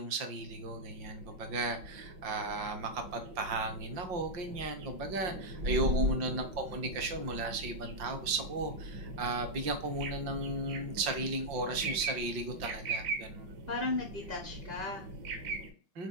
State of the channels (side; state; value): left; late; 5.6 ms